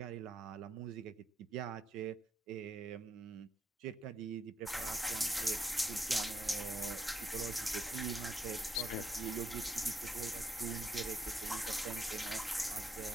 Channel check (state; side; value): normal; both; correlation 0.78